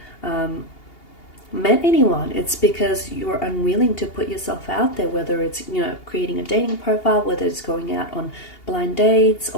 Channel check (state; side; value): late; right; 2.8 ms